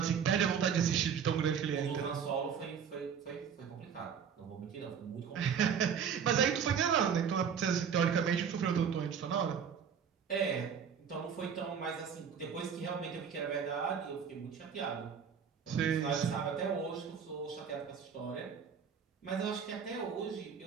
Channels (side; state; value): left; quieter; 7.2 dB